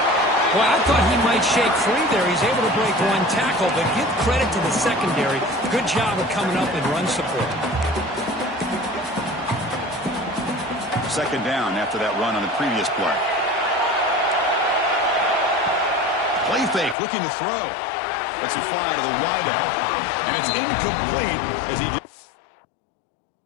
Well, I thought he might shake free there. He's able to break one tackle, but give credit to the secondary. Good job of coming up and run support. Second down after that run on the previous play. Play fake, looking to throw. Lets it fly to the wideout. And it's incomplete as he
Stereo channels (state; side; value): drops out; right; at 16.9 s